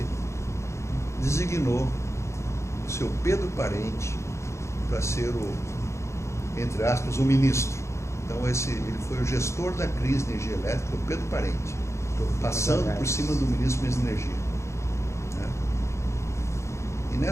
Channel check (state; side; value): late; right; 0.14 ms